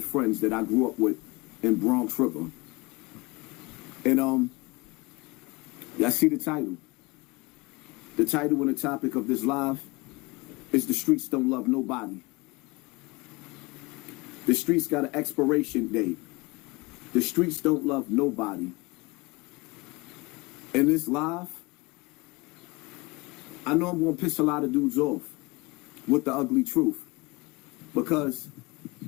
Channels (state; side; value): quieter; right; 24.6 dB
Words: friends that I grew up with in Bronx River. And y'all see the title. The title and the topic of this live is "The Streets Don't Love Nobody." The streets got an expiration date. The streets don't love nobody. In this live, I know I'm going to piss a lot of dudes off with the ugly truth. Because